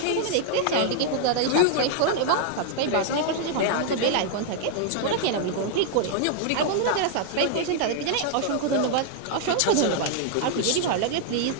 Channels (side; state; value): both; different; correlation 0.00